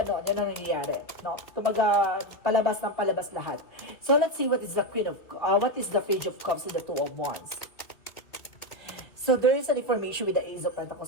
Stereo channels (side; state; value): right; late; 2.5 ms